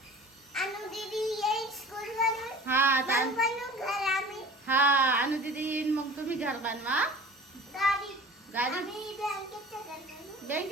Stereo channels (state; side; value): normal; both; correlation 0.41